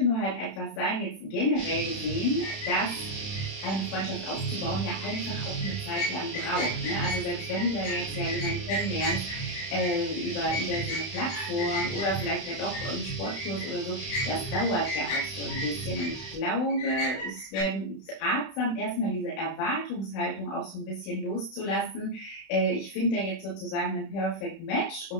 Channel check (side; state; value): right; late; 31 ms